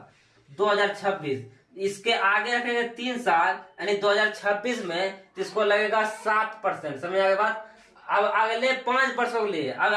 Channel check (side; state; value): both; identical; correlation 1.00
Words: 2026, इसके आगे रखेंगे 3 साल, यानी 2026 में, तो इसको लगेगा 7%। समझ आ गई बात। अब अगले 5 वर्षों के लिए, अब